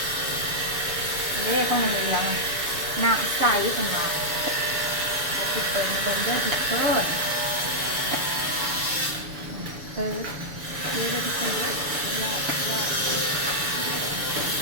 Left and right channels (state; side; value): late; left; 7.0 ms